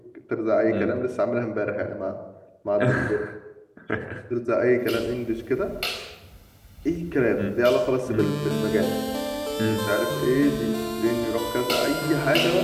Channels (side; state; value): both; identical; correlation 1.00